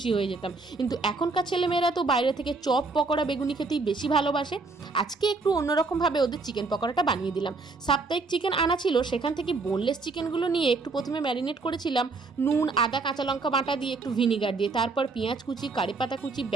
হয়ে যেতাম। কিন্তু এখনকার ছেলেমেয়েরা তো বাইরে থেকে চপ পকোড়া বেগুনি খেতেই বেশি ভালোবাসে। আজকে একটু অন্যরকমভাবে ওদের চিকেন পকোড়াটা বানিয়ে দিলাম। সাপ্তাহিক চিকেন আনা ছিল, সেখান থেকে বোনলেস চিকেনগুলো নিয়ে একটু প্রথমে ম্যারিনেট করেছিলাম নুন, আদা, কাঁচা লঙ্কা বাটা দিয়ে, একটু ভিনিগার দিয়ে, তারপর পেঁয়াজ কুচি, কারিপাতা কুচি,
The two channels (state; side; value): quieter; left; 3.8 dB